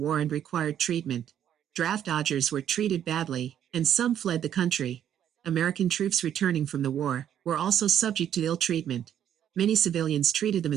and required treatment. Draft dodgers were treated badly, and some fled the country. American troops returning from the war were also subject to ill treatment. Many civilians treated them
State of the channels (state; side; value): quieter; left; 10.0 dB